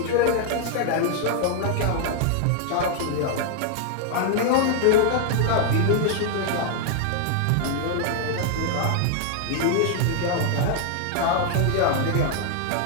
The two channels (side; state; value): both; different; correlation 0.00